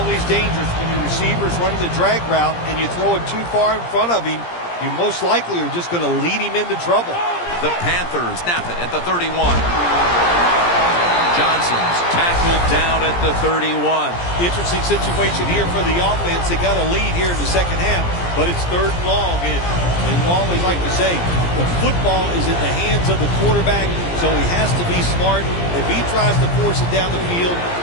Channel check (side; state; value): right; late; 17 ms